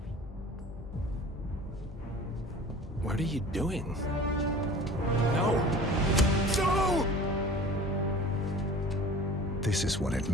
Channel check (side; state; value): both; normal; correlation 0.43